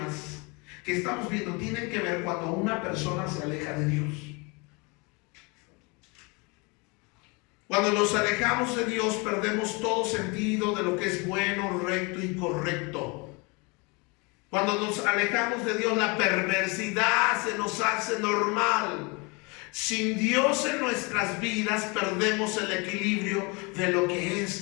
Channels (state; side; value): quieter; right; 29.0 dB